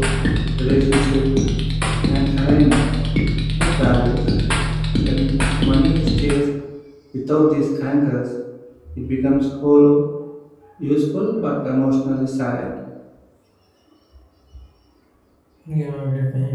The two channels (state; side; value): identical; both; correlation 1.00